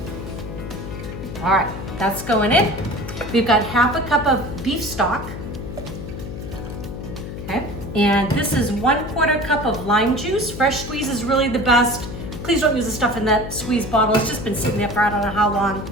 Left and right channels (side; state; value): left; noise; hum, 9 dB below the sound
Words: All right, that's going in. We've got 1/2 cup of beef stock. Okay, and this is 1/4 cup of lime juice. Fresh squeeze is really the best. Please don't use the stuff in that squeeze bottle. It's just been sitting there for I don't know how long.